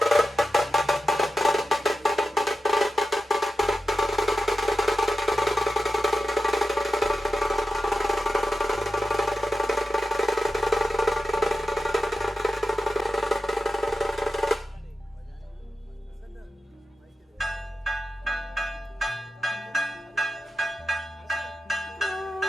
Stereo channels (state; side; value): normal; both; correlation 0.91